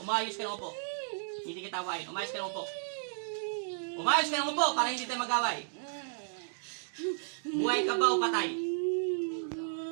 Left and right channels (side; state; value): left; silent; digital silence